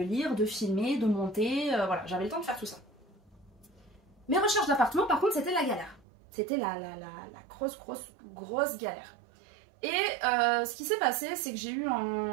lire, de filmer, de monter, voilà, j'avais le temps de faire tout ça. Mes recherches d'appartement par contre c'était la galère. C'était la grosse galère. Et ce qui s'est passé, c'est que j'ai eu,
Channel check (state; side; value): drops out; left; at 6.1 s